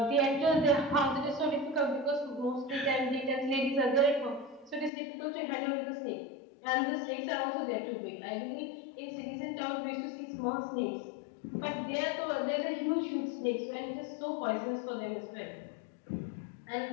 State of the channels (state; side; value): drops out; right; at 4.9 s